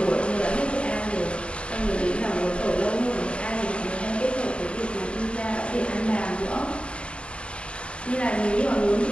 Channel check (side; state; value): right; late; 0.057 ms